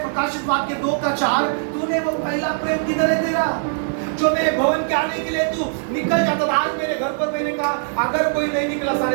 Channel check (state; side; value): silent; left; digital silence